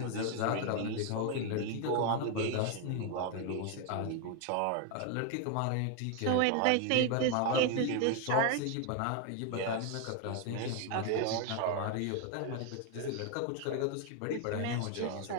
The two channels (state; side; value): different; both; correlation 0.01